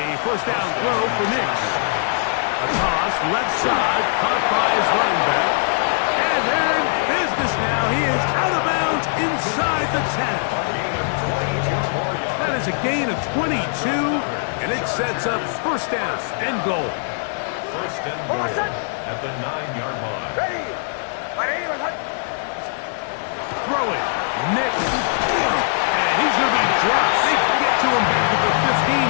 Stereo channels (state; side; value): silent; right; digital silence